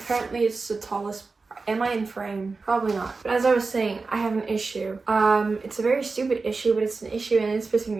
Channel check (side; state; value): left; quieter; 4.1 dB